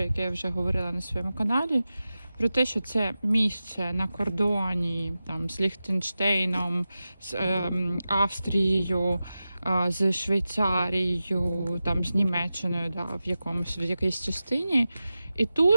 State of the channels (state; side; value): inverted; both; correlation -0.94